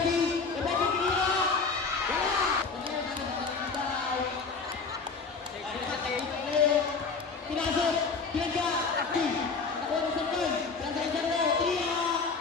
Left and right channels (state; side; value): quieter; right; 4.7 dB